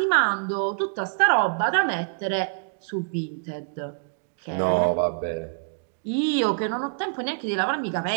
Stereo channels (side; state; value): left; quieter; 38.4 dB